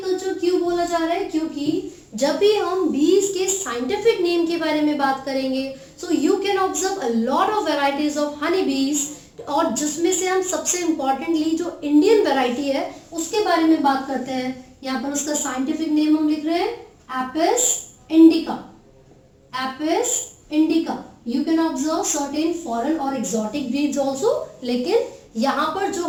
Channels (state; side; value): identical; both; correlation 1.00